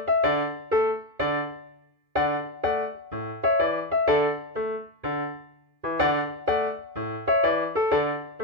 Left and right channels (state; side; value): late; left; 2.4 ms